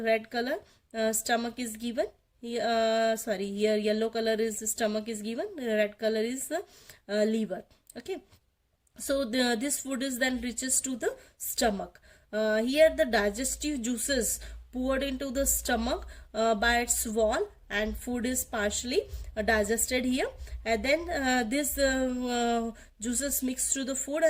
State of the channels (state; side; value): identical; both; correlation 1.00